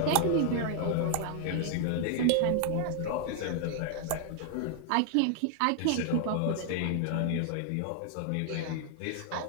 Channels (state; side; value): different; both; correlation 0.00